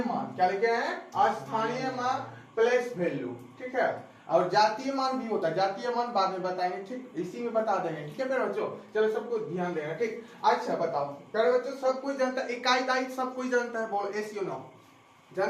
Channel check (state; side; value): identical; both; correlation 1.00